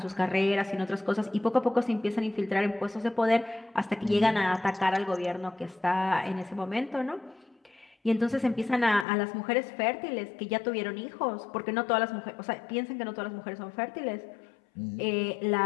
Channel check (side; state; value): right; drops out; at 9.1 s